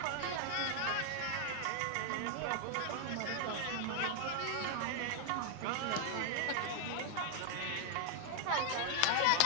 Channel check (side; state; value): both; different; correlation 0.00